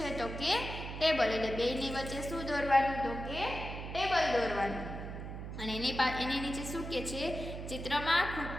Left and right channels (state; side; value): noise; right; hum, 8 dB below the sound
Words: તો કે ટેબલ. એટલે બેની વચ્ચે શું દોરવાનું? તો કે ટેબલ દોરવાનું. અને એની નીચે શું કહે છે? ચિત્રમાં